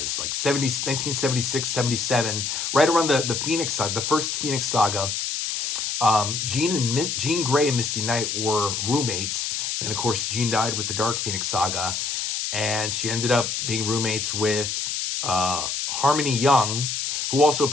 1976, 77, right around the Phoenix Saga, the first Phoenix Saga, Jean Grey and Misty Knight were roommates. And of course, Jean died with the Dark Phoenix Saga. And she ended up being roommates with Harmony Young, who also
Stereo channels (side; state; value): left; noise; hiss, 2 dB below the sound